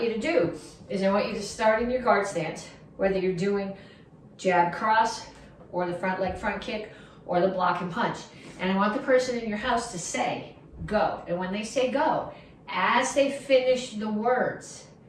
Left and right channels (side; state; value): both; identical; correlation 1.00